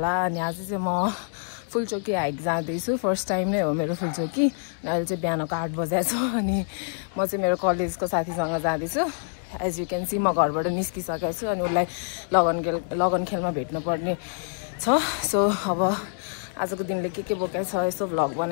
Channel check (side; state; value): right; silent; 61 dB below the other